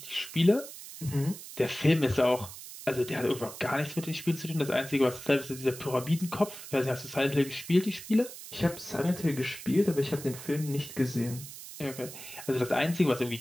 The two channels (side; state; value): right; noise; hiss, 13 dB below the sound